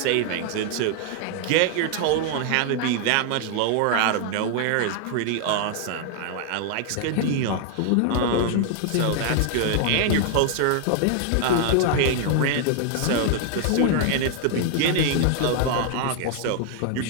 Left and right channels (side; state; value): both; different; correlation 0.00